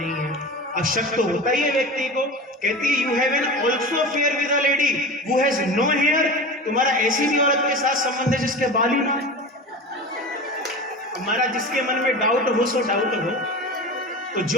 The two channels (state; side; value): normal; both; correlation 0.31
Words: है। अब शक तो होता ही है व्यक्ति को। कहती you have an also fair with a lady who has no hair. तुम्हारा ऐसी भी औरत के साथ संबंध है जिसके बाल ही ना है। हमारा जिसके मन में डाउट हो सो डाउट हो, तो